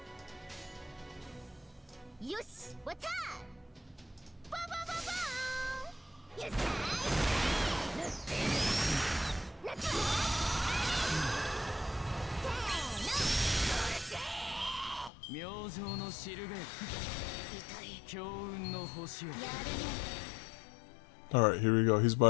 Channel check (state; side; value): drops out; right; at 15.1 s